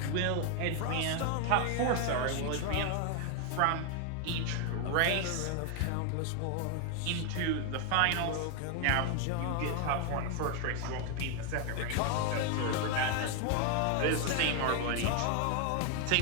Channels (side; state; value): both; different; correlation 0.00